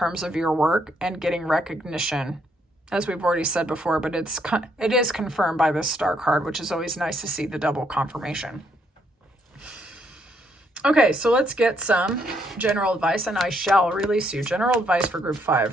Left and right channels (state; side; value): normal; both; correlation 0.72